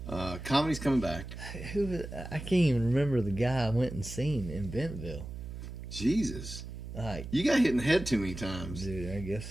Comedy's coming back. I can't even remember the guy I went and seen in Bentonville. Jesus. Like, you got hit in the head too many times. Dude, I guess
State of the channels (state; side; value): noise; right; hum, 9 dB below the sound